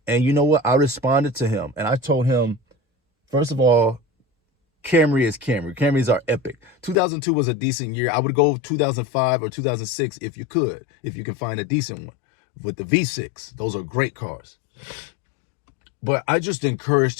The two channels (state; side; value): drops out; right; at 7.0 s